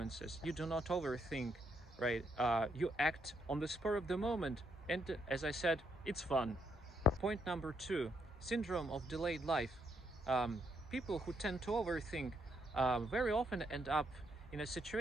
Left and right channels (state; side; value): normal; both; correlation 0.76